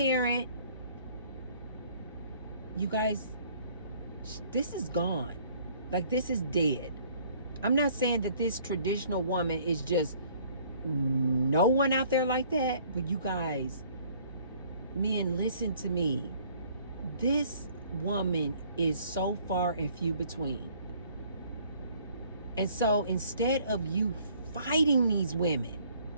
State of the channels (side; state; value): both; inverted; correlation -0.57